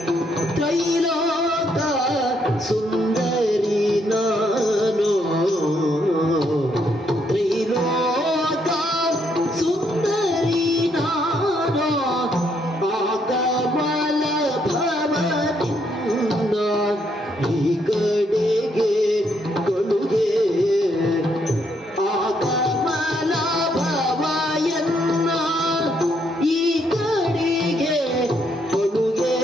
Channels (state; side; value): normal; both; correlation 0.73